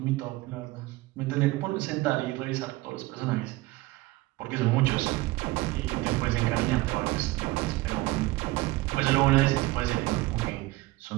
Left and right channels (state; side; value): quieter; left; 19.8 dB